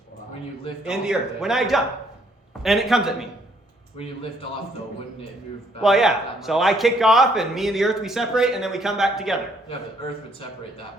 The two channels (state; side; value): normal; both; correlation 0.67